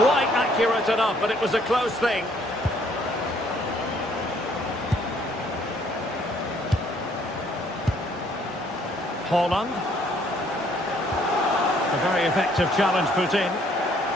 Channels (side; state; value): both; normal; correlation 0.64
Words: accurate enough, but it was a close thing. Haaland. A very effective challenge put in.